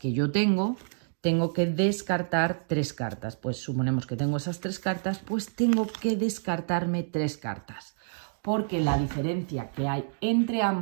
yo tengo que descartar 3 cartas. Pues suponemos que tengo esas 3 cartas, pues tengo que descartarme 3 cartas. Porque la diferencia que hay entre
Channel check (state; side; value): silent; left; digital silence